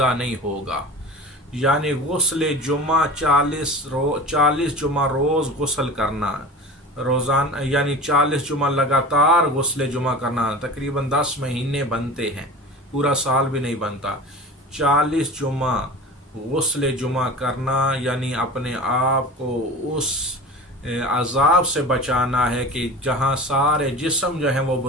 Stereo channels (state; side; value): normal; both; correlation 0.35